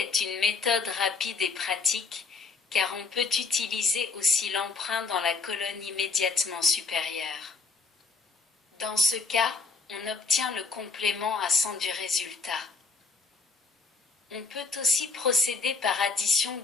une méthode rapide et pratique, car on peut utiliser aussi l'emprunt dans la colonne immédiatement supérieure. Dans ce cas, on obtient le complément à 100 du résultat. On peut aussi procéder par addition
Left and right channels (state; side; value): quieter; right; 4.2 dB